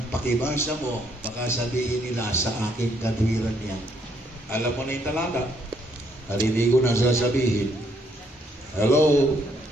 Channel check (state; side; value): normal; both; correlation 0.70